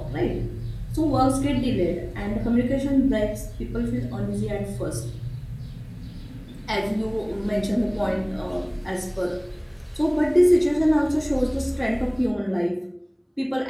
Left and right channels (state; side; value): identical; both; correlation 1.00